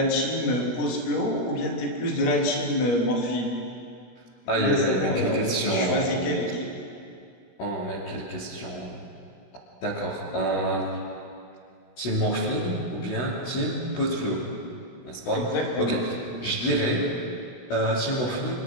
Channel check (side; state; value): right; late; 16 ms